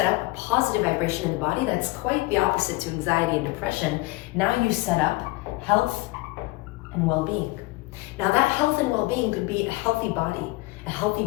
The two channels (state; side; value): quieter; right; 21.7 dB